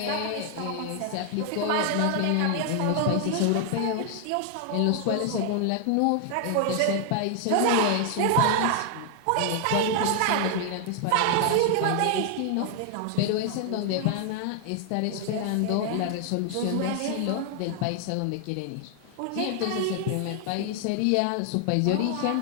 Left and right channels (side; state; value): both; different; correlation 0.00